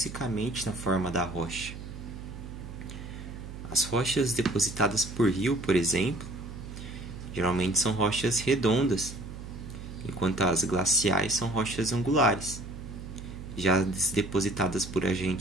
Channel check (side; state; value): right; noise; hum, 11 dB below the sound